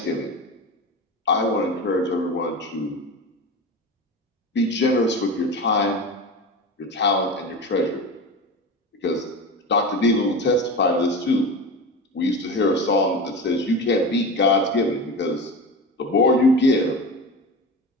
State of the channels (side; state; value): both; normal; correlation 0.27